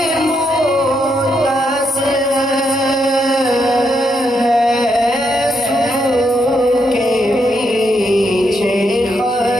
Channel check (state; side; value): normal; both; correlation 0.79